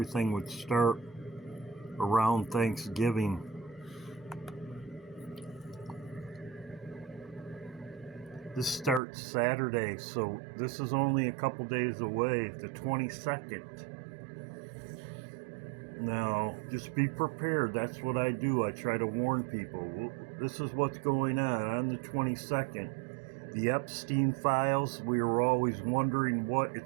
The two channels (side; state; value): left; drops out; at 9.0 s